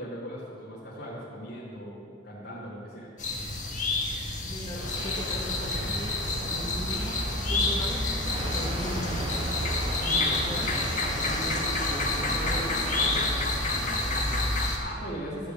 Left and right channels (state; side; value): normal; both; correlation 0.28